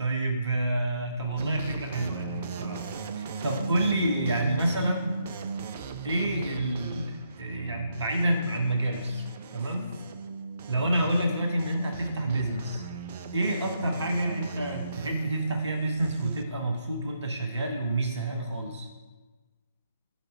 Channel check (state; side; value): inverted; both; correlation -0.77